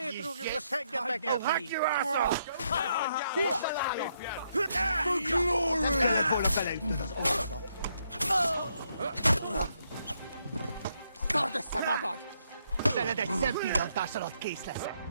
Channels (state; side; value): inverted; both; correlation -0.76